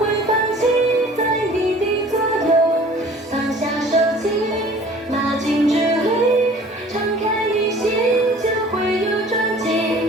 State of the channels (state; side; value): normal; both; correlation 0.48